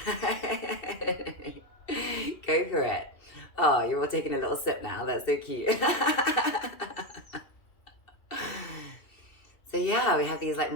for it. Oh, you're all taking a little sip now. That's so cute. So yeah, we have these like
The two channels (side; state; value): right; late; 2.7 ms